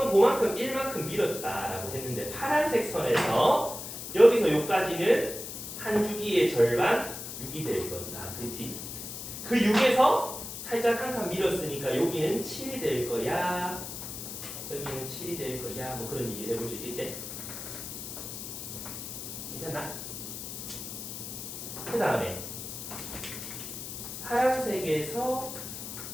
그만큼 1만큼 밀었다라고 했는데 파란색 선에서 여기서 여기까지는 한 주기의 절반 6이 될 거다. 그지? 그 6에서 살짝 한 칸 밀었으니까 여기는 7이 될 거야. 여기는 7이 될 거야. 뭐 그런 얘기를 해볼 수 있겠지? 괜찮나? 그 다음에 파란색에서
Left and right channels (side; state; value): left; noise; hiss, 8 dB below the sound